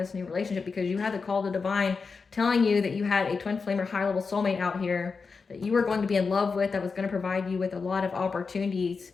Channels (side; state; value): right; quieter; 4.8 dB